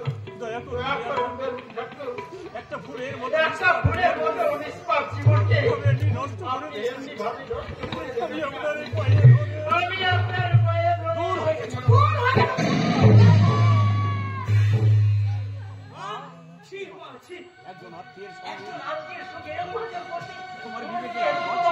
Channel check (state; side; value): identical; both; correlation 1.00